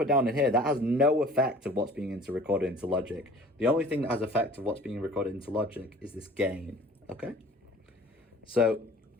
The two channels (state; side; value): normal; both; correlation 0.47